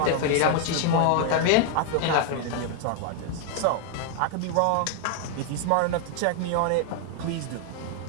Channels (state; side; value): different; both; correlation 0.00